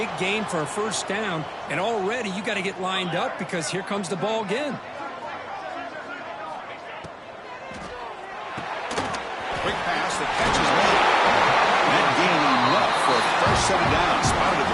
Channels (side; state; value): both; identical; correlation 1.00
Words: gain for a first down, and already you got to get lined up because here comes the ball again. Quick pass, the catch is made. set it down. Spotted at